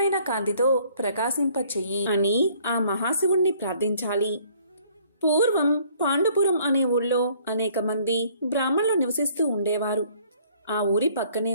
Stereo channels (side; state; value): both; inverted; correlation -0.60